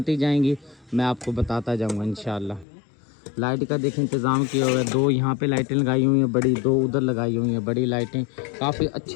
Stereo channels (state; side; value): drops out; right; at 2.7 s